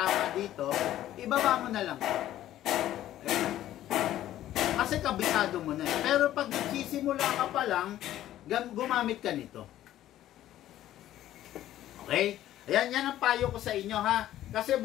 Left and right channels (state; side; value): quieter; right; 13.1 dB